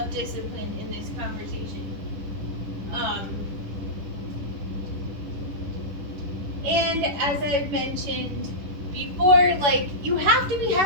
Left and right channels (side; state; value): left; late; 11 ms